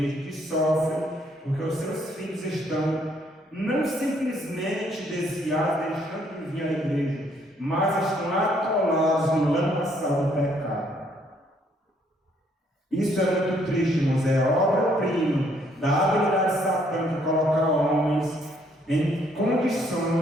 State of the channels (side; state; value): both; normal; correlation 0.68